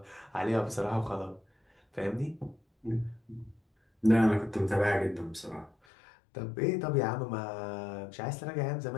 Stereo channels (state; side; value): drops out; right; at 5.7 s